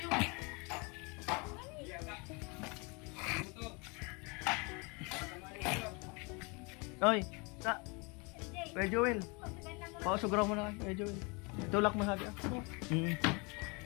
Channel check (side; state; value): right; quieter; 29.9 dB